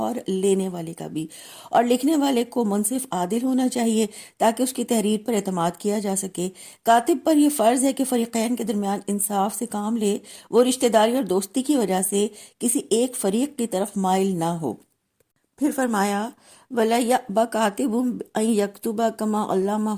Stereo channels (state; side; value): identical; both; correlation 1.00